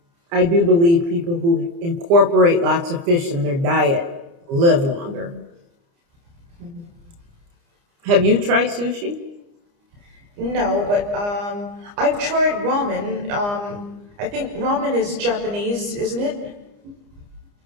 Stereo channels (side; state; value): left; late; 29 ms